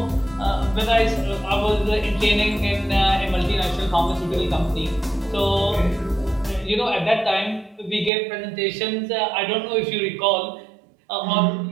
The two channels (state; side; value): drops out; left; at 8.1 s